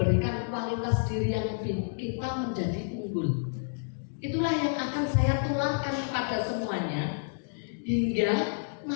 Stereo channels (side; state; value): right; silent; digital silence